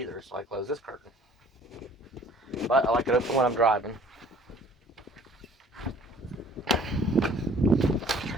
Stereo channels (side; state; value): both; normal; correlation 0.53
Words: so I close this curtain. But I like it open when I'm driving.